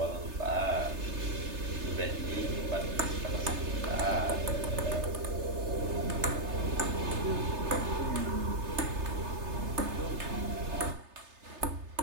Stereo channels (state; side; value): late; left; 3.3 ms